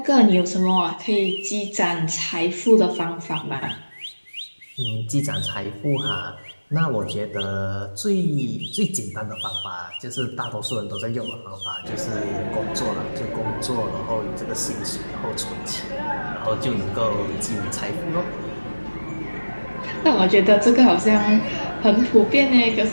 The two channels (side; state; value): both; inverted; correlation -1.00